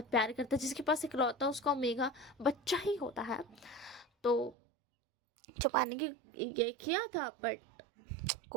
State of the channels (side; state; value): left; drops out; at 4.5 s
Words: प्यार करता है, जिसके पास इकलौता उसका ओमेगा बच्चा ही होता है, तो छुपाने की ये किया था, बट